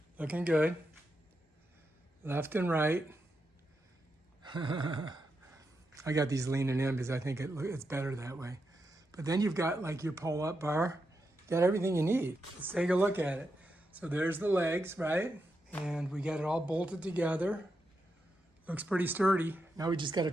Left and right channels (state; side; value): normal; both; correlation 0.85